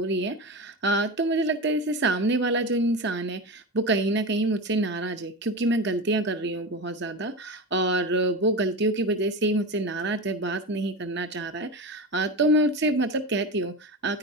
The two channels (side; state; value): both; normal; correlation 0.23